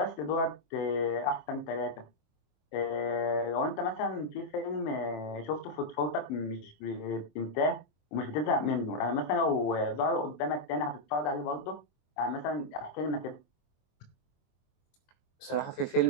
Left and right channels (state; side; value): late; right; 23 ms